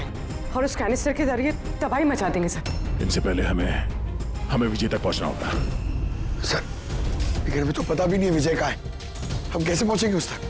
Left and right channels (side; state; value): both; identical; correlation 1.00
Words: और उस कैनिस्टर के जरिए तबाही मचा देंगे सर। इनसे पहले हमें विजय तक पहुंचना होगा। सर, लेकिन हमें तो पता भी नहीं है विजय कहाँ है। हम कैसे पहुंचेंगे उस तक?